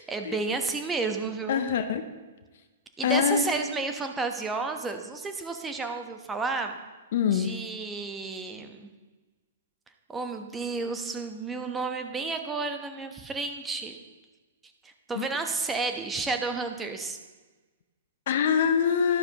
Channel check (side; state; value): both; normal; correlation -0.05